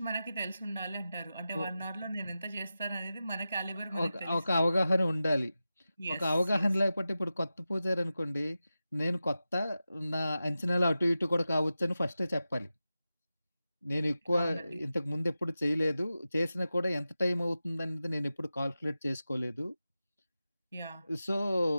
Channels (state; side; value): inverted; both; correlation -0.93